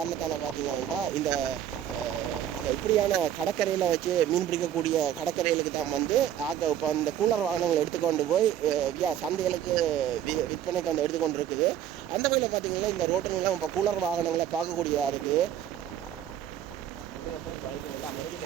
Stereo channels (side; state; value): left; quieter; 10.5 dB